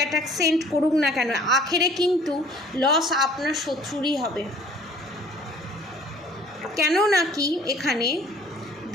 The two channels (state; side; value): normal; both; correlation 0.53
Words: send করুক না কেন, আখেরে কিন্তু লস আপনার শত্রুরই হবে। কেন নাকি এখানে